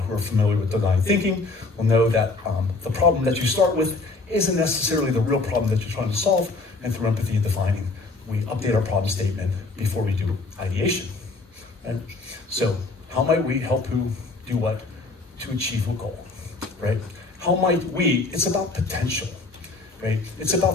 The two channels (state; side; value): quieter; right; 3.5 dB